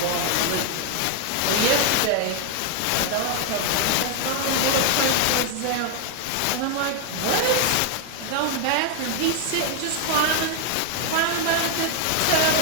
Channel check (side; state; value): both; different; correlation 0.01